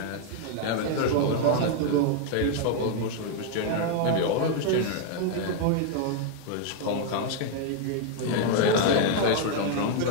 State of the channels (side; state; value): both; different; correlation 0.00